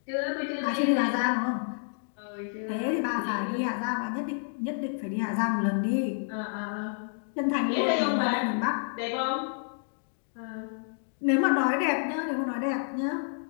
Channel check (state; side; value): silent; right; digital silence